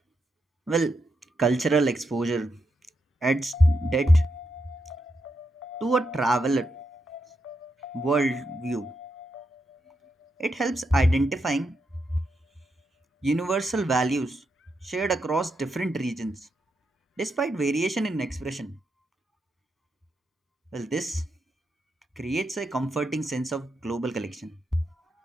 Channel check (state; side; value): normal; both; correlation 0.83